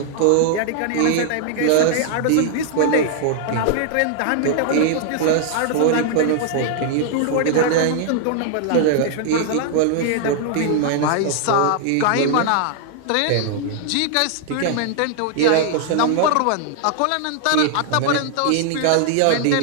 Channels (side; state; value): both; different; correlation -0.01